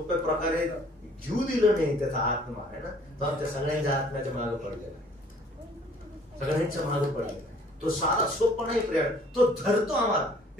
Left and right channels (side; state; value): both; normal; correlation 0.56